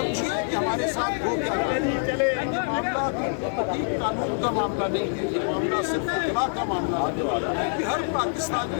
کہ ہمارے ساتھ ہو کیا رہا ہے۔ یہ معاملہ قانون کا معاملہ نہیں ہے، یہ معاملہ صرف اطلاع کا معاملہ ہے، یہ ہر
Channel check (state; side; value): silent; right; 61 dB below the other